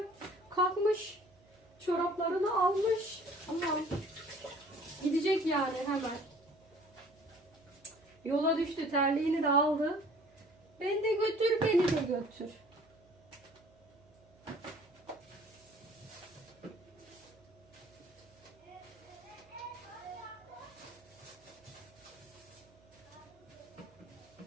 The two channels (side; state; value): right; noise; hum, 29 dB below the sound